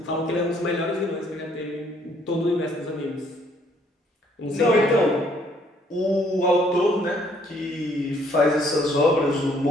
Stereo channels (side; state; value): both; normal; correlation 0.65